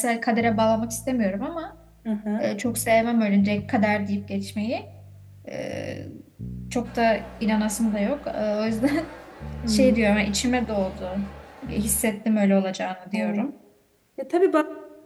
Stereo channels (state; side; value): identical; both; correlation 1.00